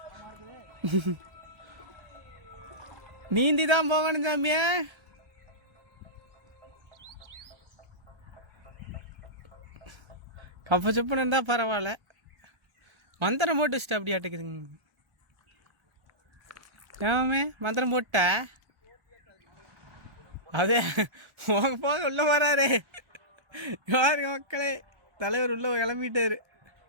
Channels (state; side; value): late; left; 1.3 ms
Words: நீந்தி தான் போகணும் சாமியா. கப்ப செப்புன்னு இருந்தால் பரவாயில்ல, மந்திரம் போட்டு வச்சுட்டு அப்படி ஆட்டுக்குதுங்க. ஏமே மந்திரம் போட்ட அதே போக உள்ள வராரு. யாருங்க மக்களே, தலைவர் உள்ள கிளம்பிட்டாரு.